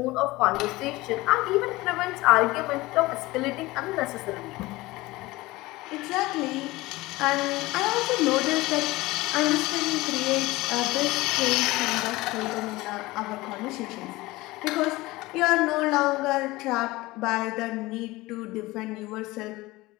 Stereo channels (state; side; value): quieter; right; 20.0 dB